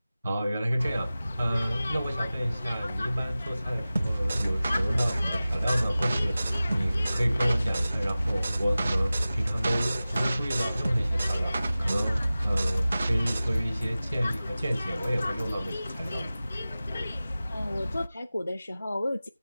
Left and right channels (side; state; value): both; inverted; correlation -0.96